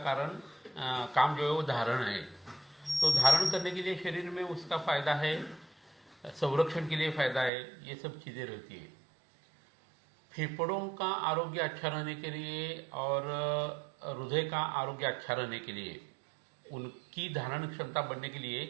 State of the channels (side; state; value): left; drops out; at 7.5 s